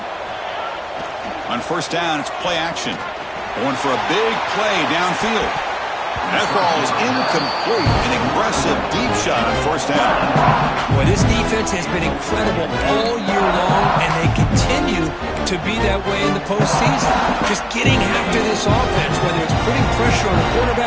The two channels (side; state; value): both; identical; correlation 1.00